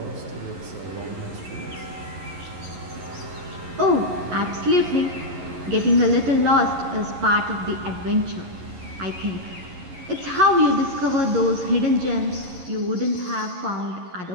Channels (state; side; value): late; left; 11 ms